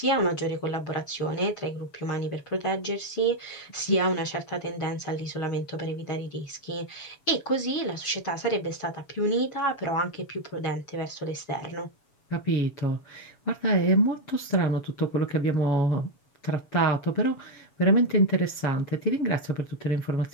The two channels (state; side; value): late; right; 7.1 ms